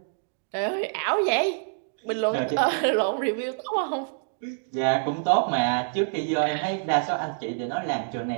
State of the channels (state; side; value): silent; left; digital silence